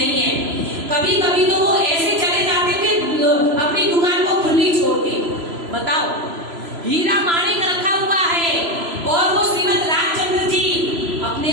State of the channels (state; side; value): late; left; 3.0 ms